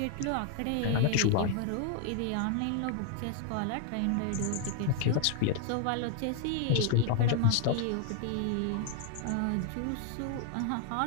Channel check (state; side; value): different; both; correlation 0.00